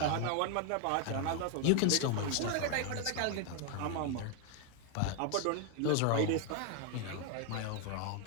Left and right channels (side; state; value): both; different; correlation 0.00